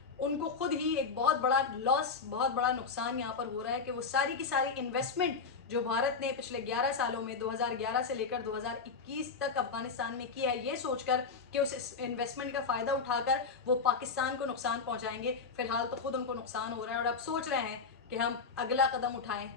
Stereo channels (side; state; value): right; quieter; 5.0 dB